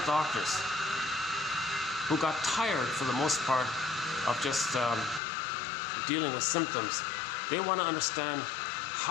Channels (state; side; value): drops out; right; at 5.2 s